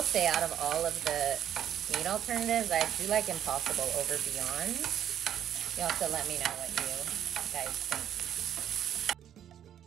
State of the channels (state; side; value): quieter; left; 10.2 dB